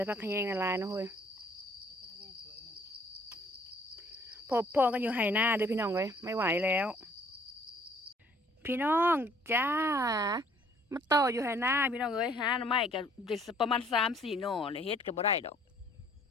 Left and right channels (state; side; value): normal; both; correlation 0.59